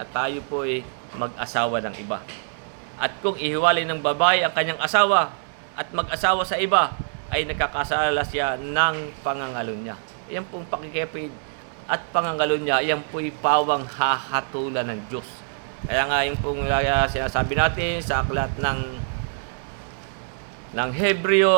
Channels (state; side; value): silent; left; digital silence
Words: tayo po mag-asawa ng iba. At kung ihiwalay ng babae ang kanyang asawa at mag-asawa sa iba, ay nakakasala siya ng pangangalunya. Yan pong pakikipid at pangangalunya, yan po'y pawang hahatulan ng Diyos. Kaya nga yung pong sinasabi natin sa aklat ng